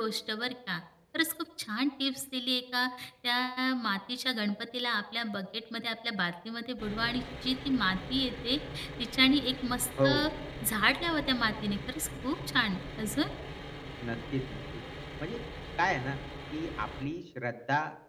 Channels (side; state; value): both; identical; correlation 1.00